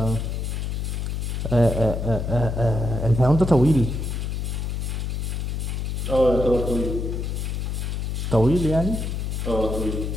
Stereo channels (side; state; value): left; noise; hum, 2 dB below the sound